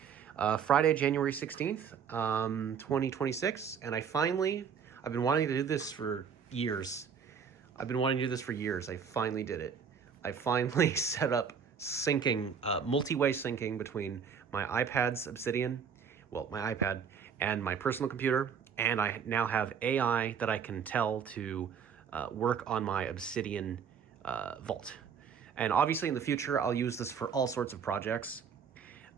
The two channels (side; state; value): left; quieter; 7.0 dB